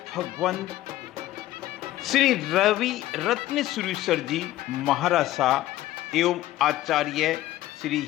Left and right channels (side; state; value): right; quieter; 15.2 dB